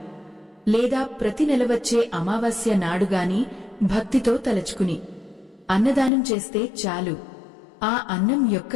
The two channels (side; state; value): right; drops out; at 6.1 s